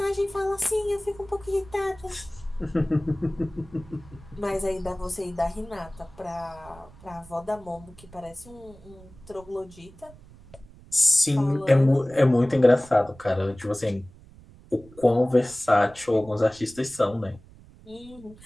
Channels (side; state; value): right; noise; rumble, 22 dB below the sound